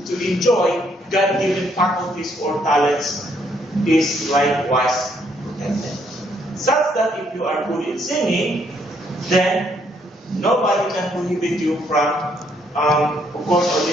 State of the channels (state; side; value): normal; both; correlation 0.70